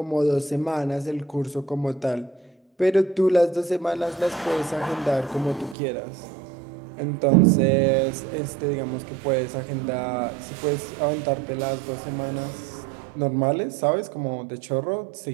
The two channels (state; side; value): drops out; left; at 5.8 s